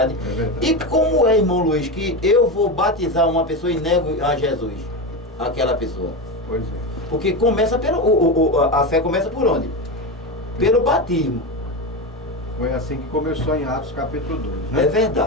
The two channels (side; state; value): both; normal; correlation 0.17